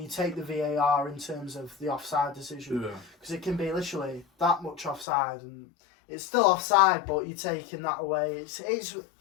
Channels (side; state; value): right; drops out; at 5.1 s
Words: take the VAR in terms of the offside decision? Yeah. Because it can be literally that much offside, and it's still offside, but you're taking that away. It's